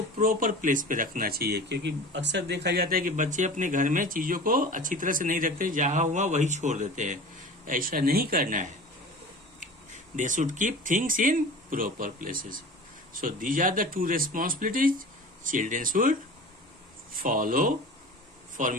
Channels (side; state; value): both; normal; correlation 0.37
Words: प्रॉपर प्लेस पे रखना चाहिए, क्योंकि अक्सर देखा जाता है कि बच्चे अपने घर में चीजों को अच्छी तरह से नहीं रखते, जहां हुआ वही छोड़ देते हैं। ऐसा नहीं करना है। They should keep things in proper places. So these are the 2 responsibilities children should follow for